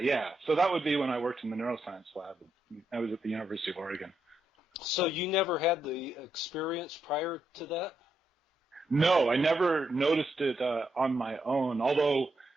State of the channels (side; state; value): both; normal; correlation 0.80